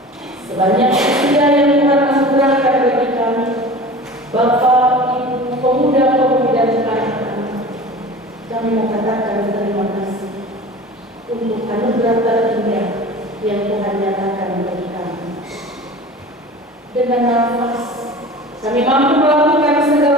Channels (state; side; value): normal; both; correlation 0.38